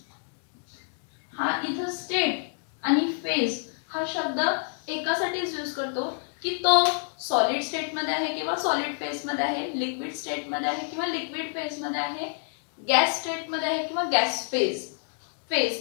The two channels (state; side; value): silent; right; 59 dB below the other